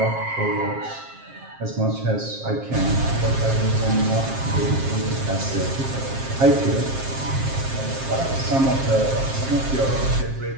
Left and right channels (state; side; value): late; left; 7.5 ms